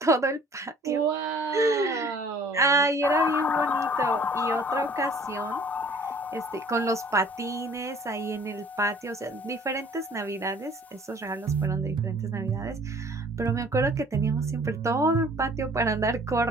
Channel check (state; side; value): normal; both; correlation 0.52